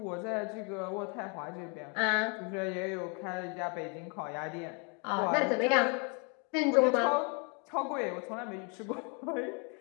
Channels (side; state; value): right; quieter; 35.4 dB